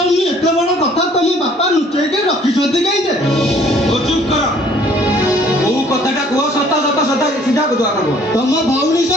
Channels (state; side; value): normal; both; correlation 0.57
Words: ଏତେ ବଡ଼ କଥା ତମ ବାପା ଲୁଚେଇକି ରଖିଛନ୍ତି କାହିଁକି? ଓ ଚୁପ୍ କର। କୋଉ କଥାଟା କୁହ ସତ ସତ ସତ ସିଧା କୁହ ଆଗ କୁହ। ତମ ଭଉଣୀ